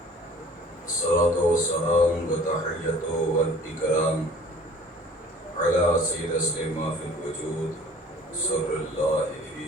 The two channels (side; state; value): both; normal; correlation 0.49